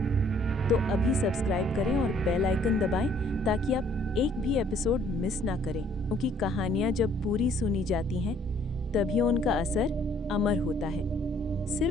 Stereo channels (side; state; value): both; normal; correlation 0.61